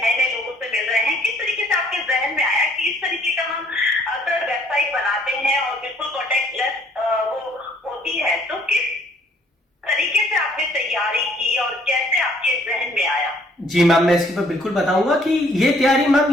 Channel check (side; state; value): both; normal; correlation 0.62